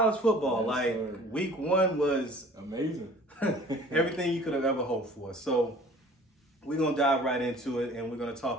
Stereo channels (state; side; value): normal; both; correlation 0.48